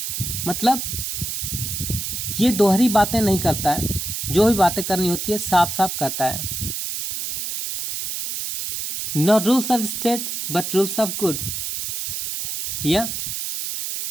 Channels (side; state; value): right; noise; hiss, 4 dB below the sound